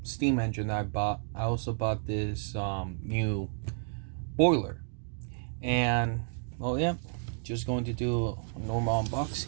steam engine that I bought, I also bought this new boiler. And well, yeah, just going to do a normal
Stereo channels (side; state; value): left; silent; digital silence